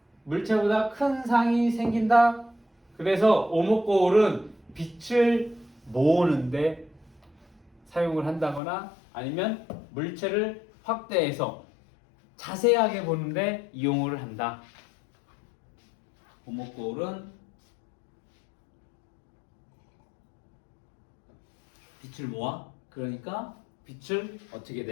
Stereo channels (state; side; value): drops out; right; at 8.6 s